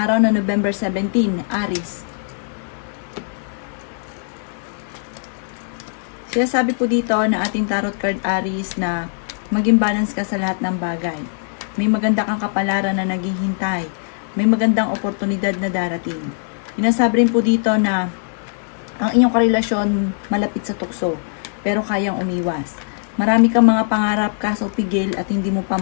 na November 17, Aries. Sinasabi po dito na ating tarot card Aries na maging balance ka sa lahat ng bagay. May maganda kang kapalaran na naghihintay. May magandang oportunidad na darating. Sinasabi rin po dito na ang inyong karelasyon malapit sa tukso, pero kayang umiwas. Marami kang mga pangarap kaso pigil at hindi mo pa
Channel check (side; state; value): right; silent; digital silence